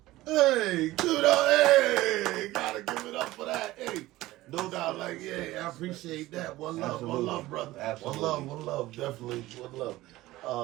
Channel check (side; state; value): left; quieter; 17.4 dB